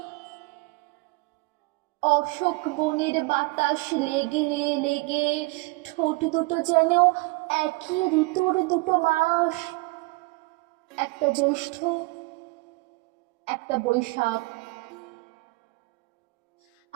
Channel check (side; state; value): left; quieter; 24.9 dB